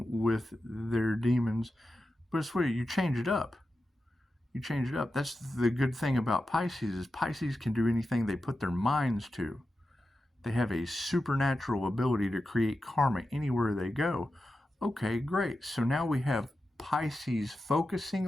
with their demons, but it's what you change it up. You change it up. That's the good thing about Pisces is Pisces can do anything they put their minds to. They have a supernatural ability to create karma anywhere they go. Okay, great. So now we have Pisces focusing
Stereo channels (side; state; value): both; normal; correlation 0.91